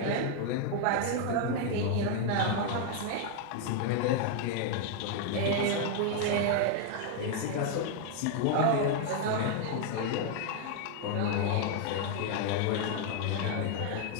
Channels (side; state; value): both; different; correlation 0.00